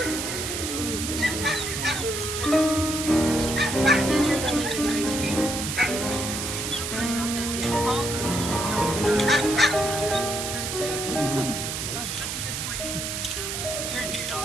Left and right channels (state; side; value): noise; right; hiss, 4 dB below the sound